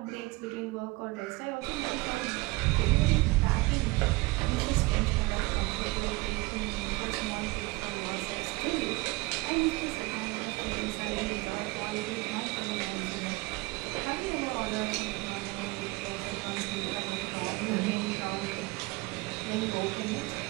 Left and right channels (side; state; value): left; quieter; 23.1 dB